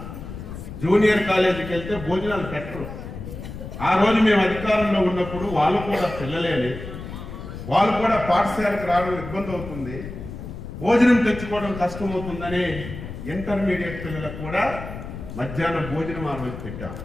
జూనియర్ కాలేజీకి వెళ్తే భోజనాలు పెట్టరు. ఆ రోజు మేము అధికారంలో ఉన్నప్పుడు వాళ్ళు కూడా పిల్లలేని, వాళ్ళు కూడా పాఠశాలకు రావడం ఇబ్బంది అవుతుంది, భోజనం తెచ్చుకోవడం కష్టమవుతుందని ఇంటర్మీడియట్ పిల్లలకు కూడా మధ్యాహ్నం భోజనం ఆ రోజు పెట్టాం.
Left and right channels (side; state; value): left; noise; rumble, 10 dB below the sound